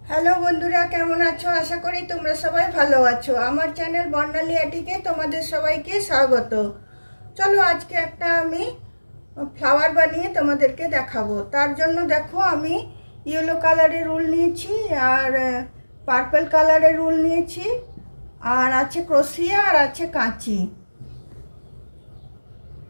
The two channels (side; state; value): both; inverted; correlation -1.00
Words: Hello বন্ধুরা, কেমন আছো? আশা করি তোমরা সবাই ভালো আছো। আমার চ্যানেল বর্ণালী আটিকে তোমাদের সবাইকে স্বাগত। চলো আজকে একটা আমি ফ্লাওয়ার বানিয়ে তোমাদেরকে দেখাবো। তার জন্য দেখো আমি ইয়েলো কালারের উল নিয়েছি আর পার্পল কালারের উল নিয়েছি, আর আছে ক্রোশিয়া আর আছে কাঁচি।